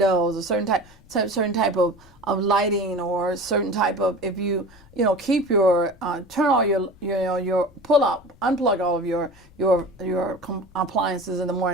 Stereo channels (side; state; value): left; noise; rumble, 26 dB below the sound